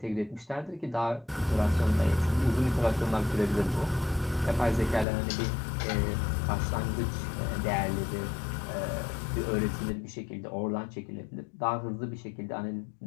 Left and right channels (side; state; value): right; drops out; at 5.1 s